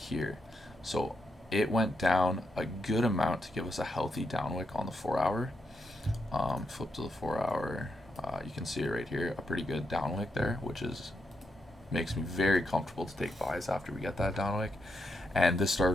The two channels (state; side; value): normal; both; correlation 0.82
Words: So it went down a good amount to give us a healthy downwick on the 4 hour. Flip to the 4 hour. You can see it right here, a pretty good downwick there, which makes me very comfortable to take buys after we get that downwick. And this